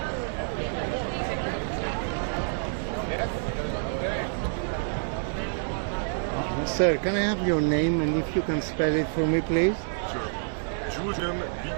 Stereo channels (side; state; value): left; silent; 59 dB below the other